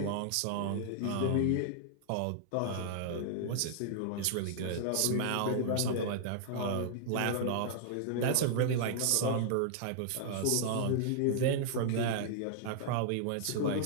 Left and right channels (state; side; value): different; both; correlation -0.01